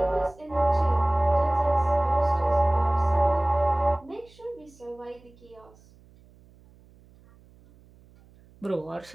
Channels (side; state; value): right; noise; hum, 27 dB below the sound